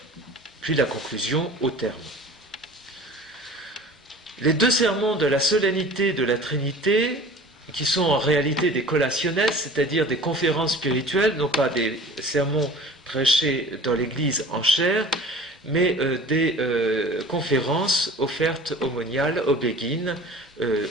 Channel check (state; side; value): normal; both; correlation 0.42